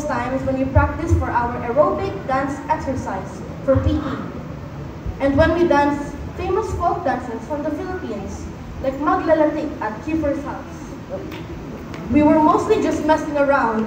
times when we practiced for our aerobic dance exercise for PE, and when we danced famous folk dances from the Philippines, like Maglalatik at Kiefer's house. We were mostly just messing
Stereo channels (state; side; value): identical; both; correlation 1.00